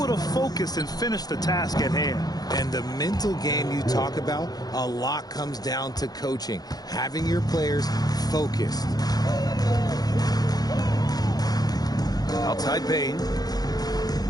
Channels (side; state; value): right; late; 0.19 ms